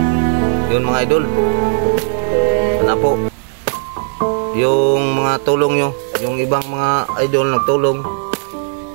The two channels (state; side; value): silent; left; 57 dB below the other